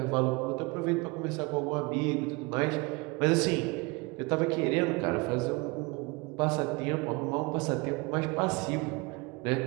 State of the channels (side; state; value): left; quieter; 27.3 dB